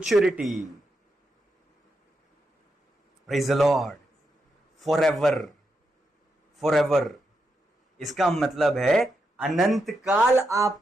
Praise the Lord. Forever, forever इसका मतलब है अनंत काल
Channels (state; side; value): normal; both; correlation 0.84